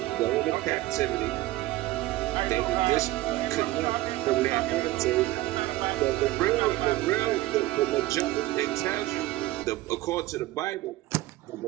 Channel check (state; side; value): quieter; left; 17.4 dB